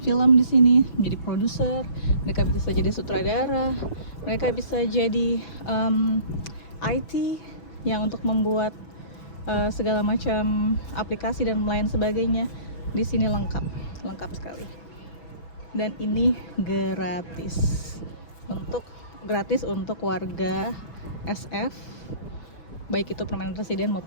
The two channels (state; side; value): late; right; 6.1 ms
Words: film di sini, menjadi produser, mereka bisa jadi sutradara, mereka bisa jadi IT yang untuk membuat segala macam aplikasi dan lain sebagainya. Di sini lengkap sekali. Dan ini gratis untuk warga SF, baik itu permanent resident